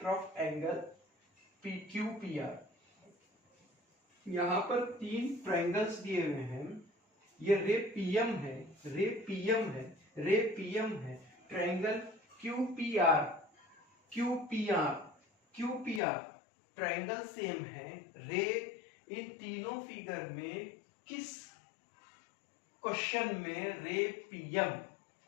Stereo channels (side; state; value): right; drops out; at 16.0 s